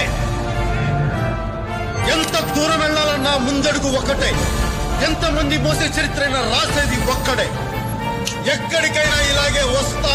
ఎంత దూరం వెళ్ళాలన్నా ముందడుగు ఒక్కటే, ఎంతమంది మోసే చరిత్రైనా రాసేది ఒక్కడే. ఎక్కడికైనా ఇలాగే వస్తా,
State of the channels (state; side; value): identical; both; correlation 1.00